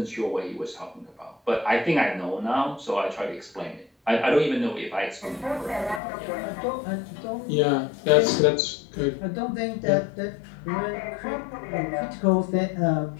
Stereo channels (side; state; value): right; drops out; at 6.0 s